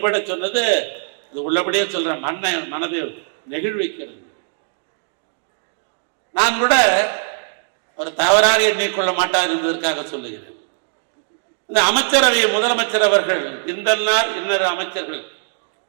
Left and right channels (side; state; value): left; silent; digital silence